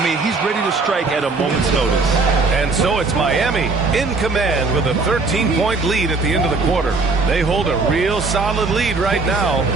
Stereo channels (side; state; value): left; quieter; 3.9 dB